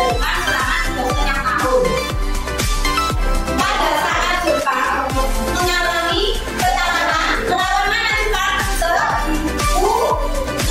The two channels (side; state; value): both; identical; correlation 1.00